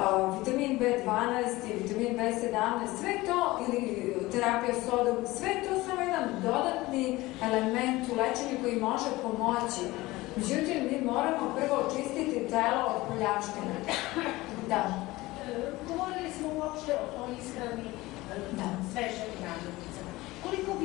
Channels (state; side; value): quieter; right; 19.6 dB